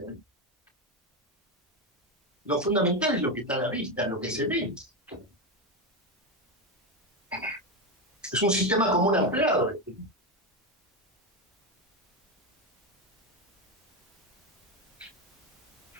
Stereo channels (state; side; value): normal; both; correlation 0.12